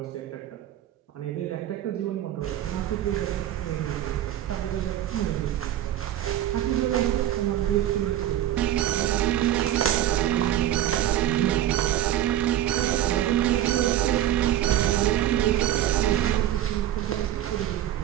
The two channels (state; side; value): quieter; left; 12.3 dB